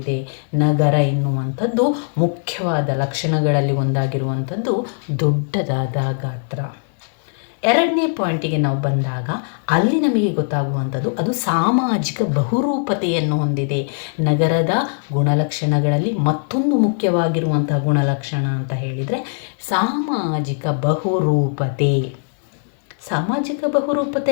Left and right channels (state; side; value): silent; right; digital silence